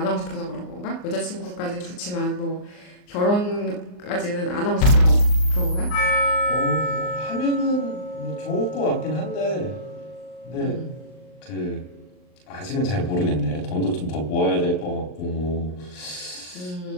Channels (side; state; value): right; late; 39 ms